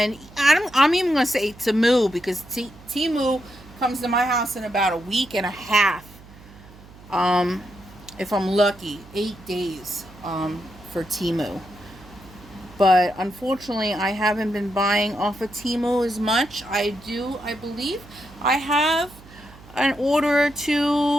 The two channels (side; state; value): right; noise; hum, 21 dB below the sound